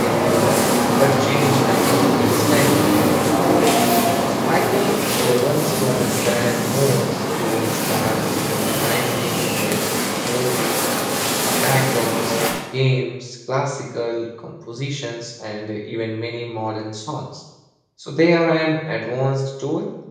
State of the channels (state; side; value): identical; both; correlation 1.00